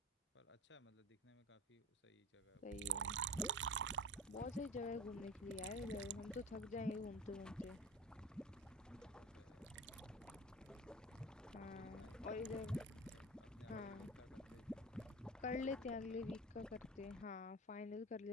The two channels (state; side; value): normal; both; correlation 0.33